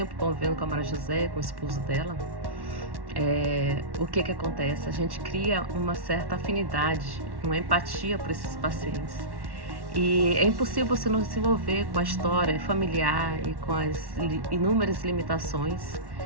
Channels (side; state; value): left; late; 1.1 ms